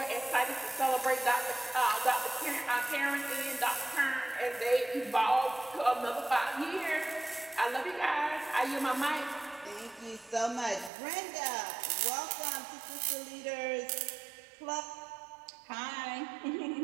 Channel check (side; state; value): left; drops out; at 10.9 s